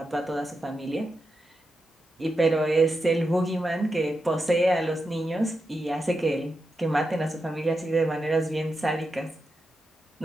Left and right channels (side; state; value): both; normal; correlation 0.88